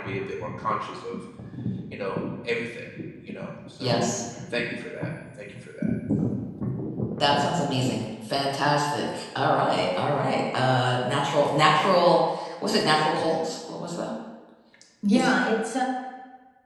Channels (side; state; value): both; identical; correlation 1.00